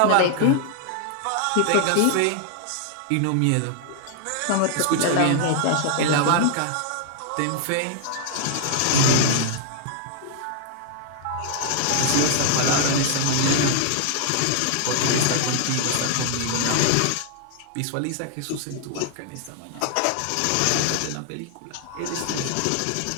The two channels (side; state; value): both; different; correlation 0.00